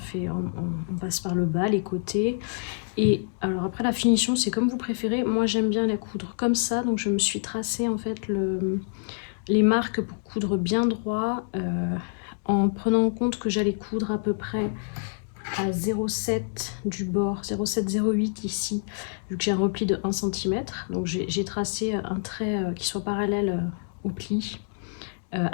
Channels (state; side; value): silent; right; digital silence